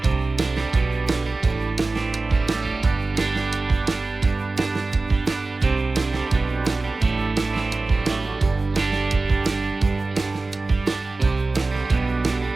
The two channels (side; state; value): left; quieter; 3.3 dB